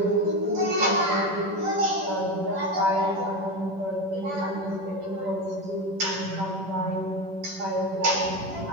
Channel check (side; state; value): left; late; 10 ms